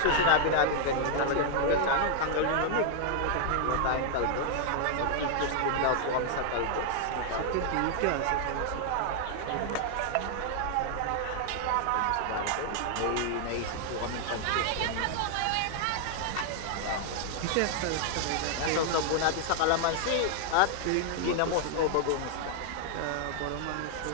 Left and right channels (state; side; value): different; both; correlation 0.00